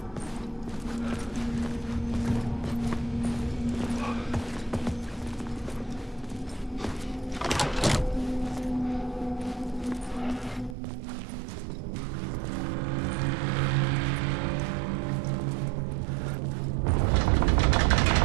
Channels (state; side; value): drops out; left; at 10.8 s